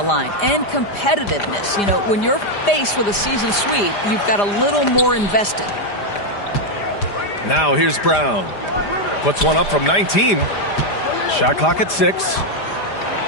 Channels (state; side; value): late; right; 5.0 ms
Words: line, and competitiveness. You know, when you're faced with a season sweep, you've got a little more invested. Now here's Brown. Puts one up from 19. Shot clock at 6.